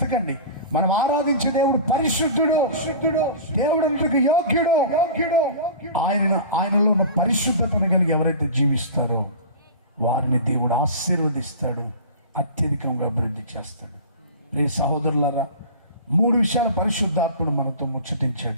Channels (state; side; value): inverted; both; correlation -0.36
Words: మనం ఆరాధించే దేవుడు పరిశుద్ధుడు. దేవుడు యోగ్యుడు. ఆయనలో ఉన్న పరిశుద్ధతను కలిగి ఎవరైతే జీవిస్తారో వారిని దేవుడు ఆశీర్వదిస్తాడు, అత్యధికంగా అభివృద్ధి చేస్తాడు. ప్రియ సహోదరులారా, 3 విషయాల పరిశుద్ధాత్మను మనతో